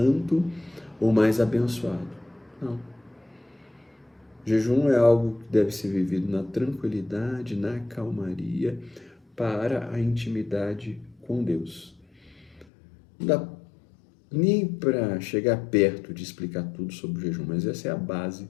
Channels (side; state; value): right; drops out; at 12.7 s